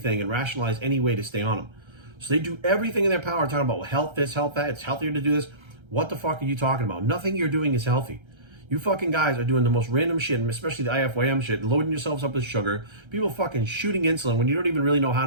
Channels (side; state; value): left; late; 1.3 ms